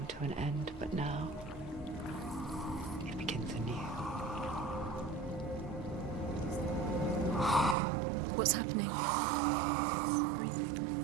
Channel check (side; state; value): left; drops out; at 7.8 s